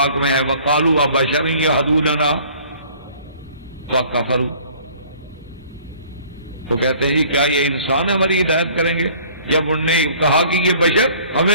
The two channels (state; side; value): inverted; both; correlation -0.52